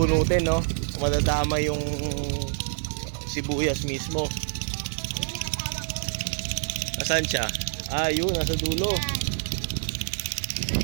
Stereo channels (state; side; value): silent; left; digital silence